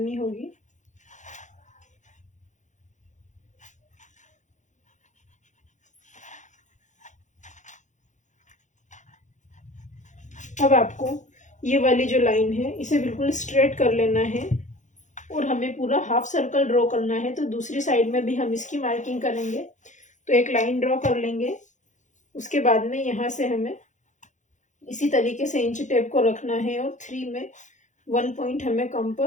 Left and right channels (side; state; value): right; late; 0.35 ms